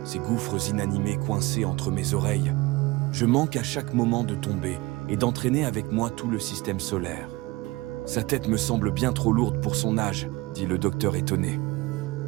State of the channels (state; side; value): quieter; left; 21.6 dB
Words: ces gouffres inanimés coincés entre mes oreilles. Je manque à chaque moment de tomber et d'entraîner avec moi tout le système solaire. Sa tête me semble bien trop lourde pour son âge, dit le docteur étonné.